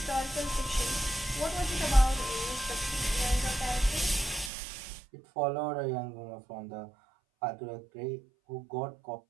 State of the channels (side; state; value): left; drops out; at 4.5 s